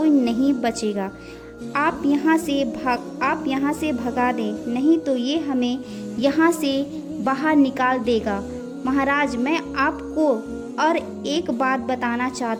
नहीं बचेगा। आप यहाँ से भगा दें, नहीं तो ये हमें यहाँ से बाहर निकाल देगा। महाराज मैं आपको और एक बात बताना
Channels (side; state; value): both; identical; correlation 1.00